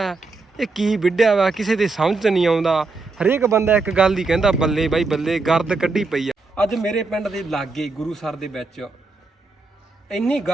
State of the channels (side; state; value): left; quieter; 3.7 dB